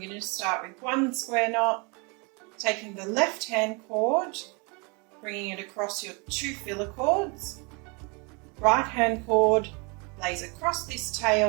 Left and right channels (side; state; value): left; quieter; 31.0 dB